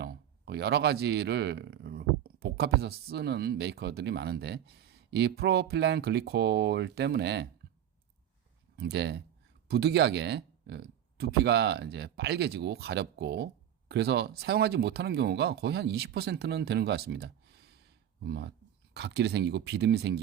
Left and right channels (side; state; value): left; quieter; 10.5 dB